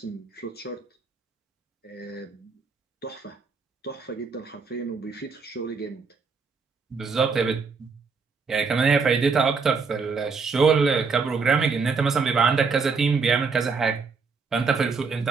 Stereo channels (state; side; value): quieter; left; 4.9 dB